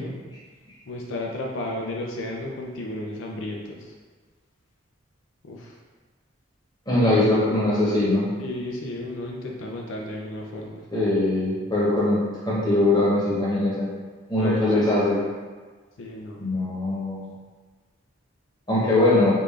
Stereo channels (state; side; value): normal; both; correlation 0.51